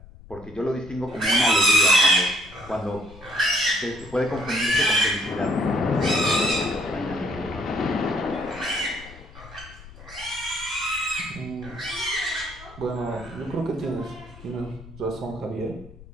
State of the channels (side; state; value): left; noise; rumble, 19 dB below the sound